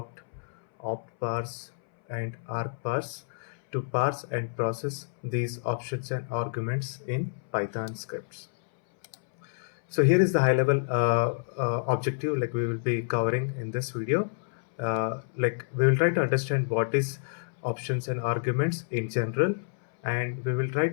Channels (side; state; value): right; silent; 59 dB below the other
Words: optparse, and argparse to parse and process these options and arguments in Python scripts. So here is the high level objective we will be covering in this video. We will try to understand what is options and arguments in general, and we will try